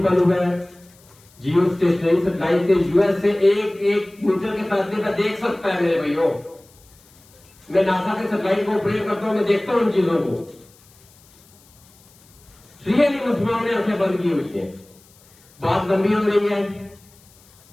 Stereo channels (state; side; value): noise; left; hiss, 28 dB below the sound